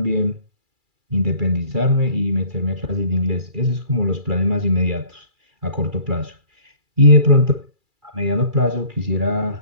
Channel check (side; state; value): left; late; 2.3 ms